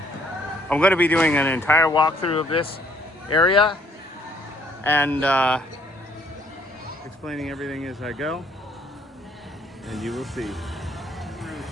I'm going to be doing an entire walkthrough of this area and explaining everything as I go. And you will see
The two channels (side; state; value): both; normal; correlation 0.64